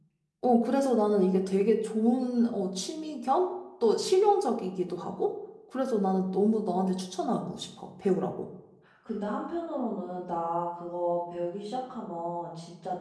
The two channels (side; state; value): both; identical; correlation 1.00